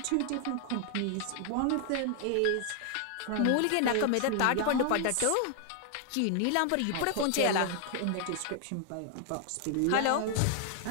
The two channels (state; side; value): different; both; correlation 0.00